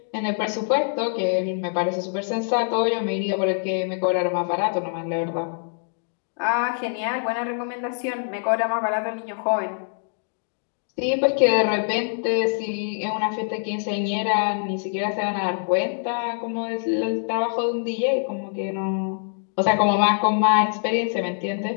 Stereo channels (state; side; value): silent; right; digital silence